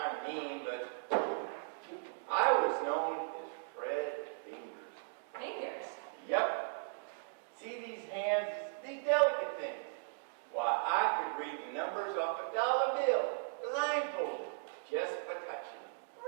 of mean, but I was known as Fred Fingers. Fingers? Yep. See these hands, these delicate things? Why, I could read the numbers off a dollar bill, blindfolded, just by touching them.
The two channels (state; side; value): silent; left; digital silence